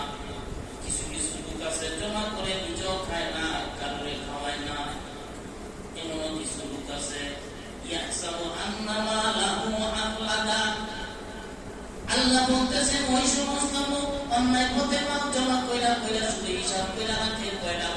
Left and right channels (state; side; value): identical; both; correlation 1.00